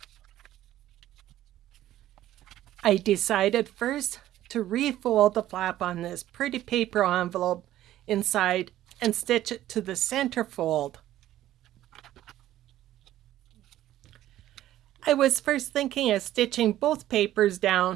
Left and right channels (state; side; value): quieter; left; 13.5 dB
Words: I decided first to refold the flap on this pretty paper envelope inside and stitch it to the center fold. I was first thinking of stitching both papers